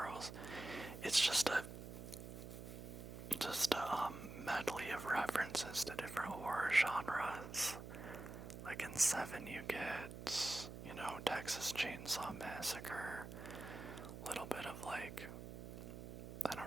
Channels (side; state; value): right; noise; hum, 10 dB below the sound